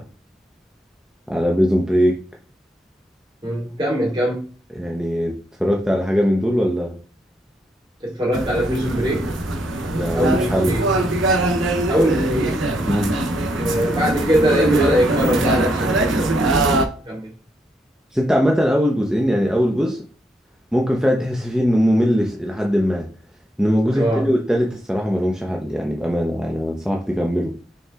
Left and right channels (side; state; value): both; normal; correlation 0.79